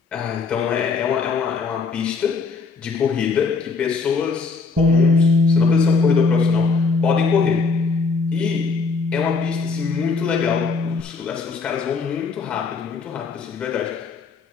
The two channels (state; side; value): quieter; right; 4.6 dB